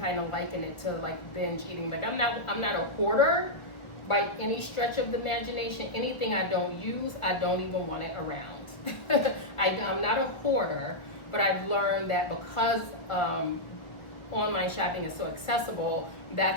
of liken it to like binge eating. Like I'm not a hoarder by any stretch of the imagination. Anything I don't use, I don't even want it around. I'm not a hoarder, but I've learned that because online shopping is so accessible,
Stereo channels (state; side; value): late; right; 1.2 ms